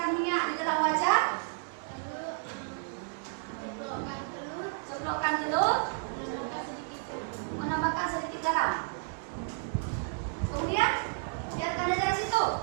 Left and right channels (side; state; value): left; silent; 57 dB below the other